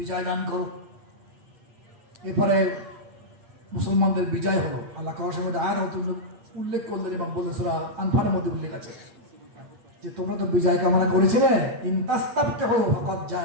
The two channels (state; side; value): late; left; 8.4 ms